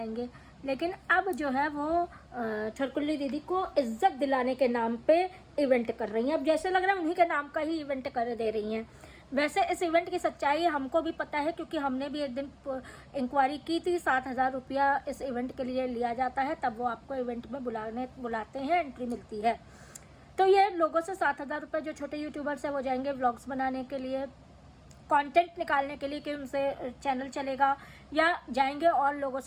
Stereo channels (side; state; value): both; identical; correlation 1.00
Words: लेकिन अब जो है वो छरकुल्ली दीदी को इज्जत दिलाने के नाम पे इवेंट कर रही हैं। अब जैसे लग रहा है उन्हीं के नाम का ही इवेंट कर दे रही हैं। वैसे इस इवेंट की सच्चाई हमको भी पता है, क्योंकि हमने भी एक दिन इंक्वायरी की थी। 7,000 रुपया इस इवेंट के लिए लिया जाता है, तब वो आपको इवेंट में बुलाते हैं, एंट्री मिलती है। तो ये लोगों से 7,000 रुपये जो छोटे यूट्यूबर्स हैं वो जाएंगे व्लॉग्स बनाने के लिए, कंटेंट निकालने के लिए कि उनसे चैनल चलेगा, या जाएंगे और लोगों